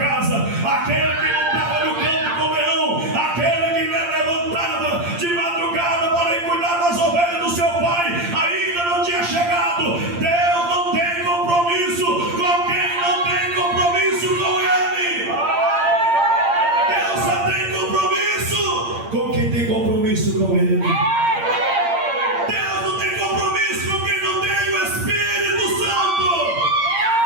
aquele que não estava no campo com o leão, aquele que levantava de madrugada para ir cuidar das ovelhas do seu pai, ainda não tinha chegado. Deus não tem compromisso com quem não tem compromisso com ele. Deus só tem compromisso com quem tem compromisso com ele. Deus não tem compromisso com quem não tem o Espírito Santo.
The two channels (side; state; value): left; late; 8.7 ms